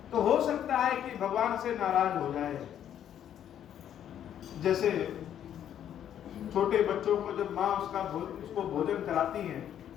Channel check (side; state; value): right; quieter; 10.1 dB